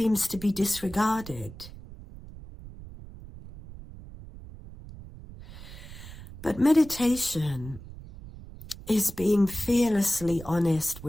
to be disregarded. But meditation is being fearlessly honest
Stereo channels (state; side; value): noise; right; rumble, 15 dB below the sound